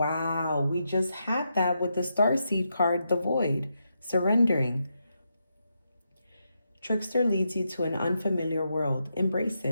we just had that with the Starseed card, the Void, surrendering. Trickster leads you to an unfamiliar world. Embrace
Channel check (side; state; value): both; inverted; correlation -0.84